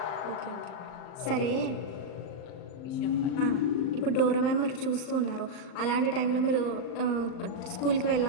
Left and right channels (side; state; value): right; late; 38 ms